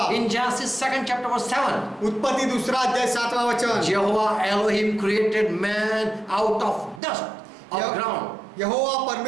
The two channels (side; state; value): left; drops out; at 7.0 s